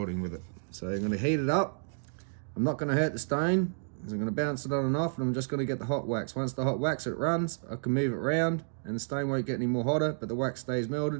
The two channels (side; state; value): left; silent; digital silence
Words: with it. So I'm going to heat it up. I'm not going to hurt the stone. I'm going to bounce it on and off, and I'm just going to get the hot wax. Once the hot wax it runs, I can move it around and the stone won't get any more hotter, but the wax stays